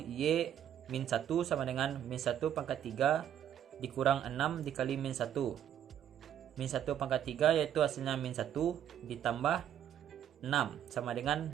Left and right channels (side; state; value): left; quieter; 10.1 dB